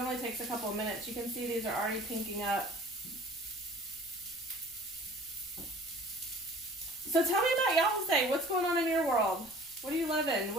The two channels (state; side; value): noise; right; rumble, 29 dB below the sound